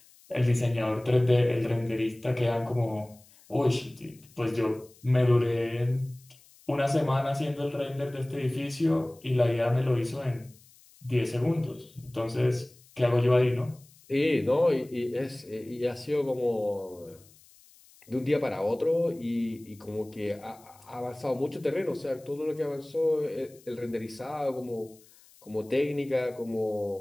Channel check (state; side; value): noise; left; hiss, 27 dB below the sound